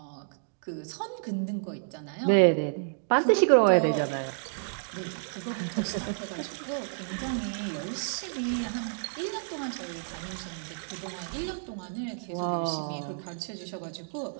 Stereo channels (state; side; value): silent; left; digital silence